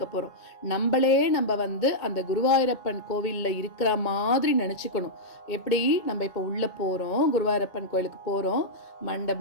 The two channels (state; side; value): late; right; 2.1 ms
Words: போறோம். நம்மளே நம்ம அந்த குருவாயூரப்பன் கோவில்ல இருக்கிற மாதிரி நினைச்சுக்கணும். எப்படி நம்ம இப்ப உள்ள போறோம், குருவாயூரப்பன் கோயிலுக்கு போறோம்,